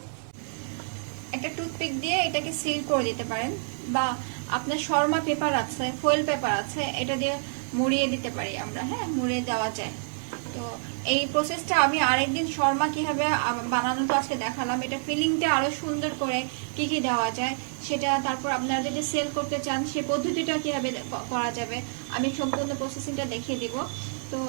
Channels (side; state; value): left; silent; digital silence